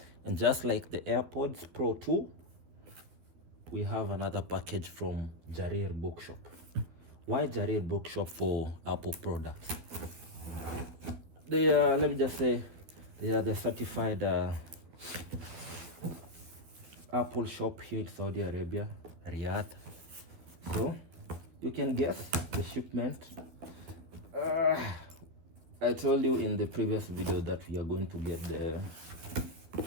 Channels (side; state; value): left; late; 12 ms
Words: And just like the AirPods Pro 2, we have another package from Jarir Bookshop. Why Jarir Bookshop for Apple products? They are, let me just say, they are the certified Apple shop here in Saudi Arabia, Riyadh. So you can guess the shipment. I told you in the previous video that we are going to get the